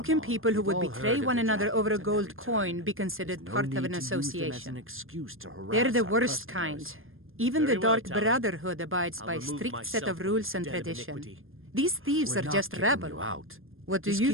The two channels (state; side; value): late; left; 0.60 ms